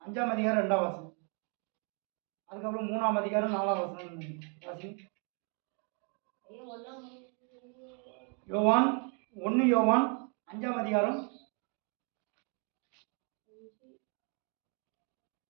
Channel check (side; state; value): left; quieter; 38.4 dB